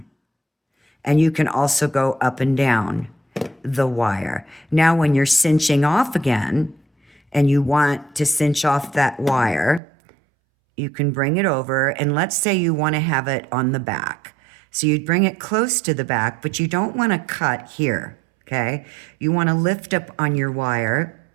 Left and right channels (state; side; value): drops out; left; at 9.8 s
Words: And you can also go up and down the wire. Now when you're cinching off again and you want to cinch off that wire, you can bring it over, and let's say you want to have it on the back. So you'd bring it close to the back, but you don't want to cut here, okay? You want to lift up on your wire,